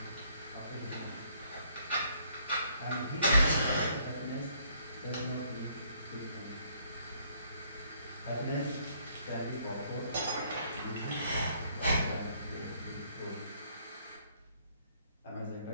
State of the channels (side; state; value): both; inverted; correlation -0.66